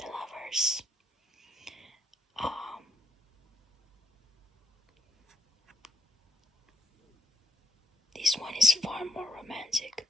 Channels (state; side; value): normal; both; correlation 0.74